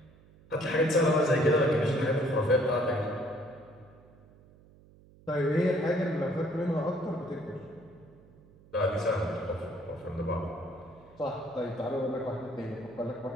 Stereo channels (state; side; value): noise; right; hum, 25 dB below the sound